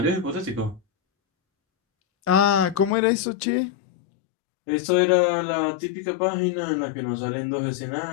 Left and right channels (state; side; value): drops out; right; at 3.0 s